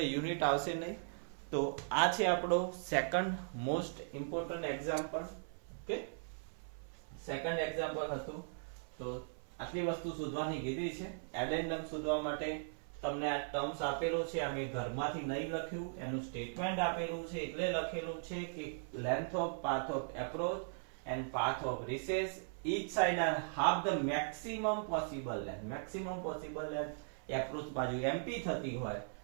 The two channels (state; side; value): silent; left; 52 dB below the other